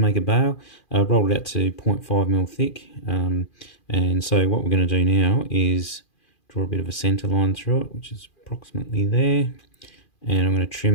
make a bail. Rolled it out to 0.5mm thick. And so what we're going to do now is draw a bit of a centre line through it, which is approximately there. And I'm going to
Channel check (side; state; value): right; late; 2.4 ms